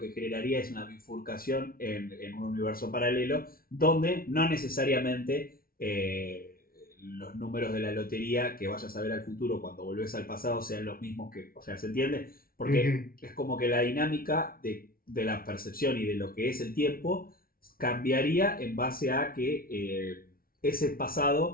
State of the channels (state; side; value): late; right; 0.43 ms